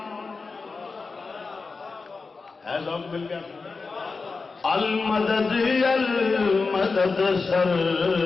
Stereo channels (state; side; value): quieter; right; 4.3 dB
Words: ہے ذوق مل گیا، المدد المدد